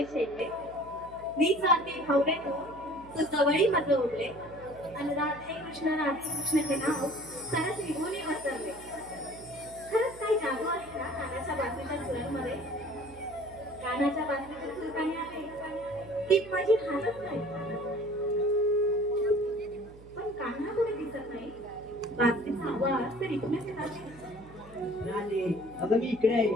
शेले मी जाते हवरे तू जवळी माझं उरले आणि राधे कृष्ण हे नाव सरस निघून वसरले. खरंच काही जादू आहे ना कानाच्या बाजूच्या सुरांमध्ये. कानाच्या बाजूच्या सूर काही आहे ती माझी हालत नाही, पण कान्हा कुठे दिसत नाही. बाजरीचा आवाज तर इथूनच येत आहे. राधे, अगं मी इकडे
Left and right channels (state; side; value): noise; right; hum, 20 dB below the sound